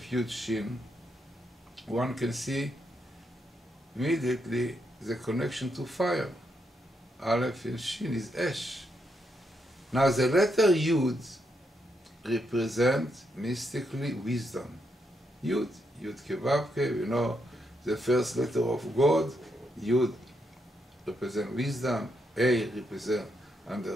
Yud, Shin, one can see immediately the connection to fire. Aleph and Shin is Esh. Now, the letter Yud represents mystically wisdom. Yud, Yud Kevavke, we know the first letter of God. Yud represents wisdom, A represents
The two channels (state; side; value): normal; both; correlation 0.80